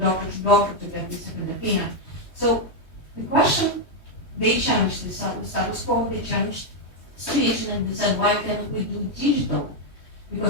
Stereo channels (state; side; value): late; right; 3.2 ms